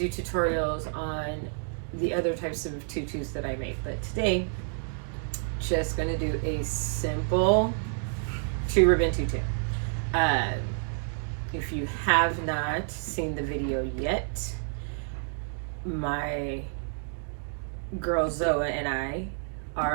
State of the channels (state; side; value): silent; left; digital silence